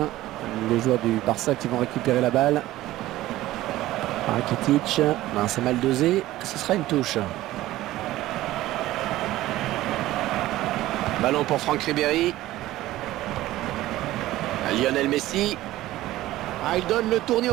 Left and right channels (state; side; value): quieter; left; 15.9 dB